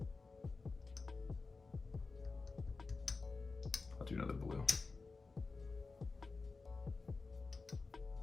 I'll do another blue.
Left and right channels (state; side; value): quieter; right; 4.1 dB